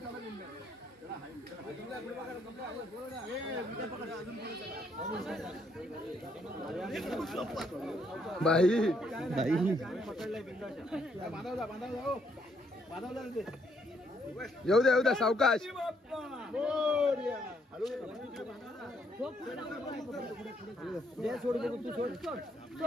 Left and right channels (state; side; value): normal; both; correlation 0.72